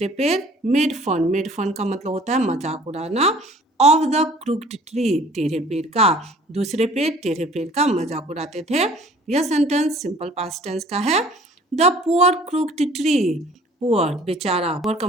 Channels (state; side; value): normal; both; correlation 0.52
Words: पेड़, मेड फन, मेड फन का मतलब होता है मजाक उड़ाना, ऑफ द क्रूक्ड ट्री, टेढ़े पेड़ का, दूसरे पेड़ टेढ़े पेड़ का मजाक उड़ाते थे। यह सेंटेंस सिंपल पास्ट टेंस का है। The poor crooked tree, poor बेचारा, पुअर का